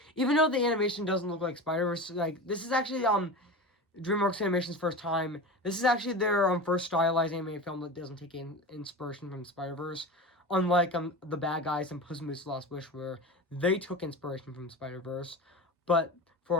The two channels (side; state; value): both; normal; correlation 0.28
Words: even though the animation doesn't look like Spider-Verse, like this is actually DreamWorks Animation's first time. This is actually their first stylized animated film that doesn't take inspiration from Spider-Verse. Unlike The Bad Guys and Puss in Boots: The Lost Wish, where they took inspiration from Spider-Verse, but